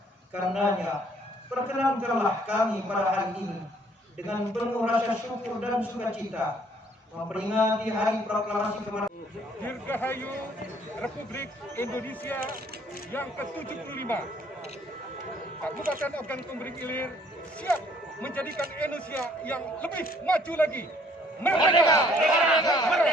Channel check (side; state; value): both; normal; correlation 0.61